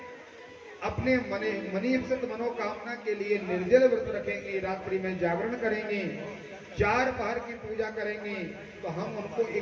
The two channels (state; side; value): identical; both; correlation 1.00